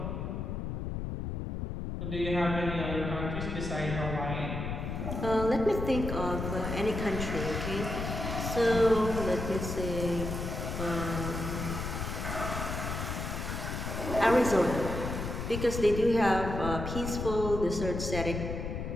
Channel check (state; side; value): noise; left; rumble, 4 dB below the sound